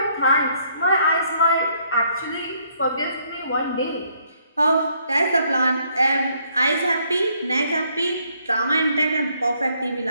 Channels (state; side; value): inverted; both; correlation -0.69